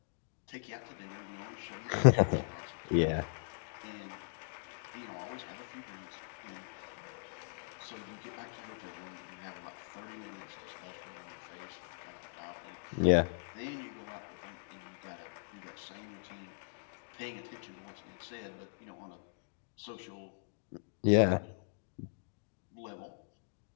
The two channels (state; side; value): silent; right; digital silence